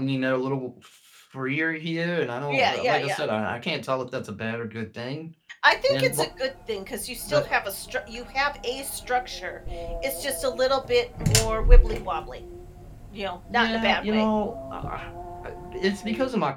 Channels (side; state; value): both; identical; correlation 1.00